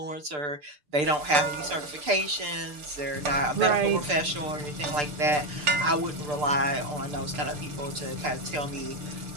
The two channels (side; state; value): left; late; 6.7 ms